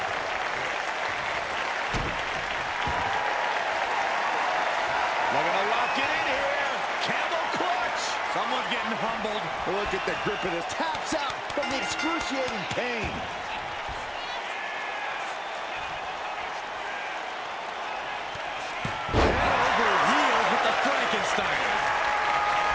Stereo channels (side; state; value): both; identical; correlation 1.00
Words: Looking to lock it in here. Camel clutch. Someone's getting humbled. Look at the grip of this. Taps out from the excruciating pain. Over heels with the Frankenstein.